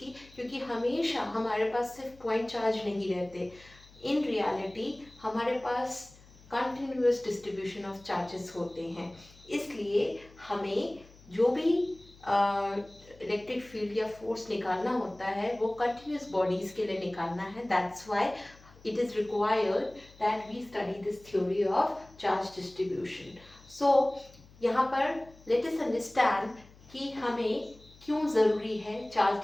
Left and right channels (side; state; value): left; noise; hum, 24 dB below the sound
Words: की क्योंकि हमेशा हमारे पास सिर्फ पॉइंट चार्ज नहीं रहते। इन रियलिटी हमारे पास कंटिन्यूस डिस्ट्रीब्यूशन ऑफ चार्जेस होते हैं। इसलिए हमें जो भी इलेक्ट्रिक फील्ड या फोर्स निकालना होता है वो कंटिन्यूस बॉडीज के लिए निकालना है। That's why it is required that we study this theory of charge distribution. So यहाँ पर let us understand कि हमें क्यों ज़रूरी है चार्ज